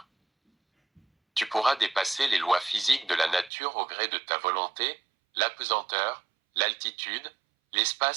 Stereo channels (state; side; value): drops out; left; at 3.5 s